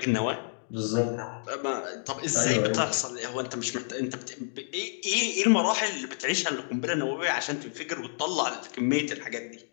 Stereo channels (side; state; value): right; silent; digital silence